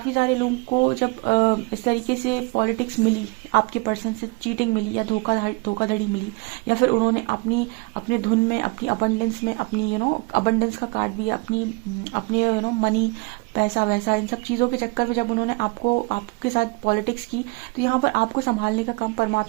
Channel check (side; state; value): left; quieter; 27.6 dB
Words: सारे लोगों को जब इस तरीके से पॉलिटिक्स मिली, आपके पर्सन से चीटिंग मिली या धोखाधड़ी मिली, या फिर उन्होंने अपने धुन में, अपनी अबंडेंस में, अपनी अबंडेंस का कार्ड भी, अपने मनी, पैसा वैसा, इन सब चीज़ों के चक्कर में जब उन्होंने आपके साथ पॉलिटिक्स की, तो यहाँ पर आपको संभालने का काम